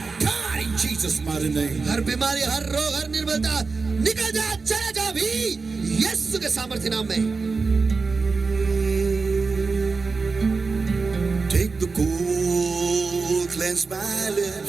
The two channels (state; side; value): quieter; left; 4.4 dB